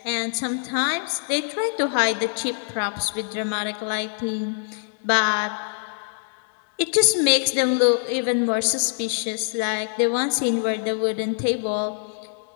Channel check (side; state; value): right; silent; digital silence